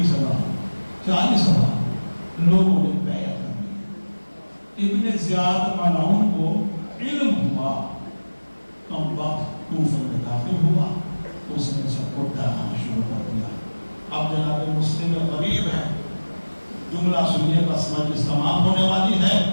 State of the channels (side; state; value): both; inverted; correlation -1.00